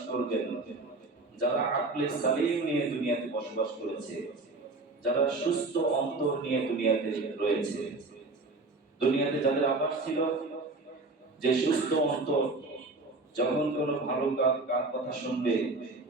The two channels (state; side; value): quieter; left; 3.3 dB